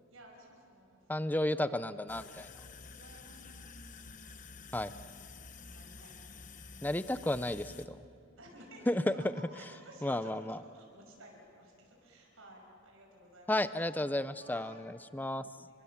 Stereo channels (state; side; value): normal; both; correlation 0.82